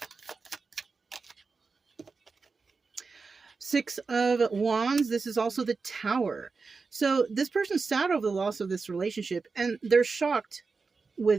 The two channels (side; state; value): left; quieter; 4.5 dB